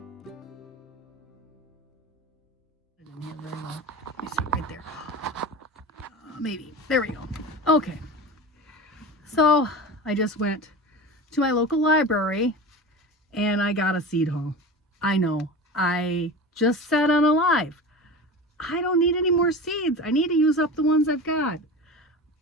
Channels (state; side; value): normal; both; correlation 0.31